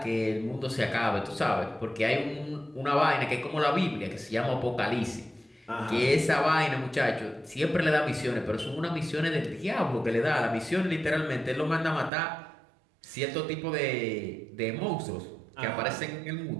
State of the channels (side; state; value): left; drops out; at 12.1 s